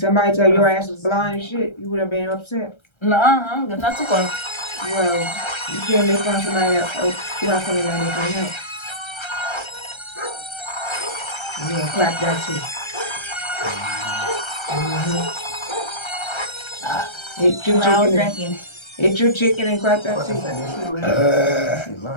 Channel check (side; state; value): right; late; 1.3 ms